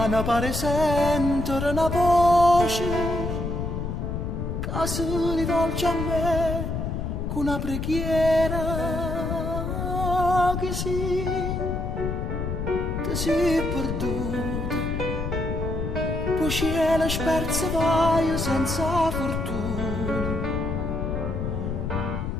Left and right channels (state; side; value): noise; left; rumble, 3 dB below the sound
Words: pare sentire una voce che si rivolge a me con una preghiera che sì, ti sei perduta, poi cielo sperse vai senza fortuna.